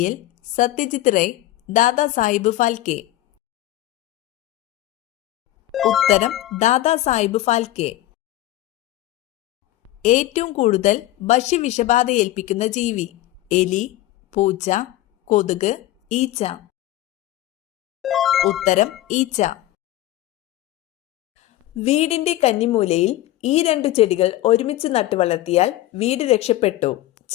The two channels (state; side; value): quieter; right; 15.3 dB